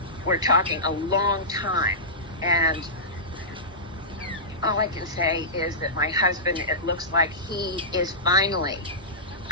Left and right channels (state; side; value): normal; both; correlation -0.17